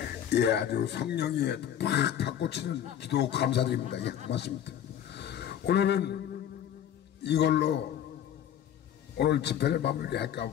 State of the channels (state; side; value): quieter; right; 10.0 dB